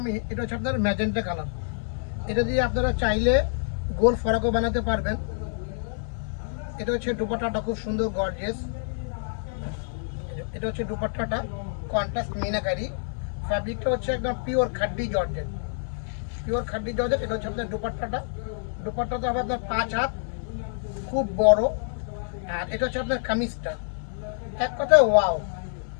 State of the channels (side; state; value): right; silent; digital silence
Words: আমি, এটা হচ্ছে আপনার ম্যাজেন্টা কালার। এটা দিয়ে আপনারা চাইলে গোল ফরাকও বানাতে পারবেন। এটা হচ্ছে দুপাট্টাটা খুব সুন্দর গর্জিয়াস। এটা হচ্ছে দুপাট্টাটা কন্ট্রাস্ট মিনাকারি। ফ্যাব্রিকটা হচ্ছে একদম পিওর খাড্ডি জর্জেট। এটা হচ্ছে আপনার দুপাট্টাটা হবে আপনার 5 হাত, খুব বড়। আর এটা হচ্ছে আপনার কামিজটা, এক কথায় ওয়াও।